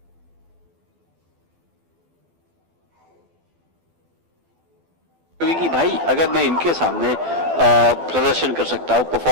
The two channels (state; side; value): late; left; 12 ms